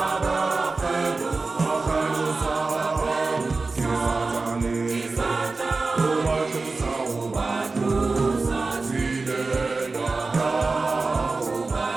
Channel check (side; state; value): left; quieter; 3.8 dB